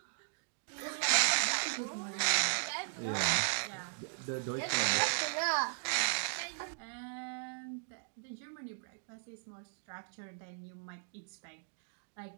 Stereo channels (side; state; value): left; silent; digital silence